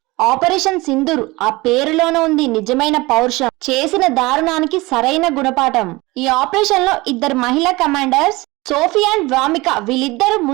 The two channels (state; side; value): quieter; left; 21.9 dB